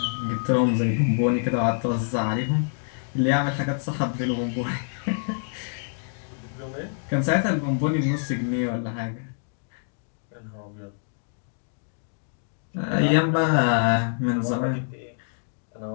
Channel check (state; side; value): silent; right; digital silence